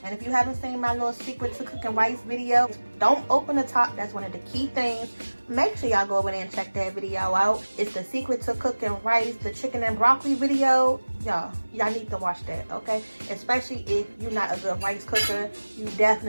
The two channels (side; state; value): both; inverted; correlation -1.00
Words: And if you haven't seen my little secret to cooking rice video, don't open the top. That's one of the key things. Make sure y'all go over there and check that video out. It's the secret to cooking rice, the chicken and broccoli video. Y'all need to watch that, okay? Especially if you're not a good rice cooker, you